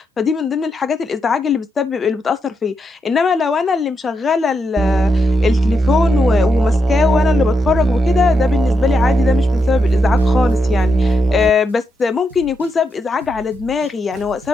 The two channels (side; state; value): both; normal; correlation 0.83